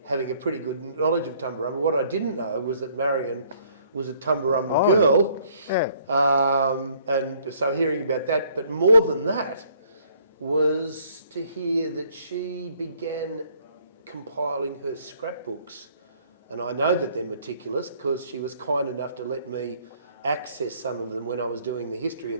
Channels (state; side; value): inverted; both; correlation -0.62